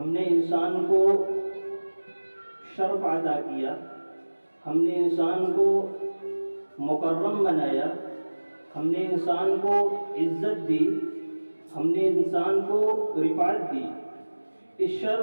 ہم نے انسان کو شرف عطا کیا، ہم نے انسان کو مکرم بنایا، ہم نے انسان کو عزت دی، ہم نے انسان کو رفعت دی۔ اس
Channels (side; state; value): both; inverted; correlation -1.00